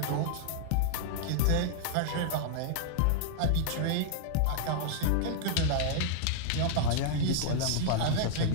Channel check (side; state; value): both; different; correlation -0.01